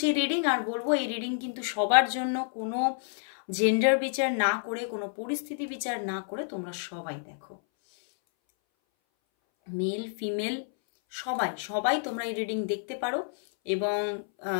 রিডিং। আর বলবো এই রিডিং কিন্তু সবার জন্য, কোনো জেন্ডার বিচার না করে, কোনো পরিস্থিতি বিচার না করে তোমরা সবাই দেখো, মেল ফিমেল সবাই সবাই তোমরা এই রিডিং দেখতে পারো। এবং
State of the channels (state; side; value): silent; right; 58 dB below the other